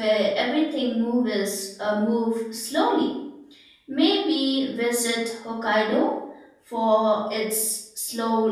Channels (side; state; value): both; identical; correlation 1.00